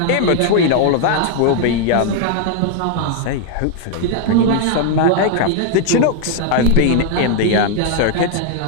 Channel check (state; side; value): different; both; correlation 0.00